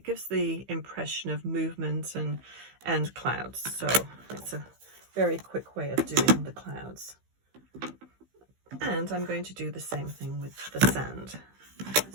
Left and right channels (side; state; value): left; late; 15 ms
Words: gives the impression of movement and clouds. So it's a very quick way of doing the clouds. And I'm going to do the same thing with the sand.